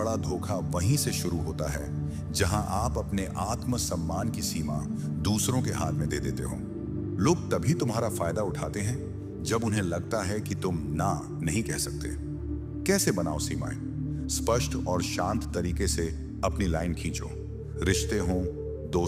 धोखा वहीं से शुरू होता है जहां आप अपने आत्मसम्मान की सीमा दूसरों के हाथ में दे देते हो। लोग तभी तुम्हारा फायदा उठाते हैं जब उन्हें लगता है कि तुम ना नहीं कह सकते। कैसे बनाओ सीमाएं? स्पष्ट और शांत तरीके से अपनी लाइन खींचो। रिश्ते हो,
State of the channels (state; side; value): identical; both; correlation 1.00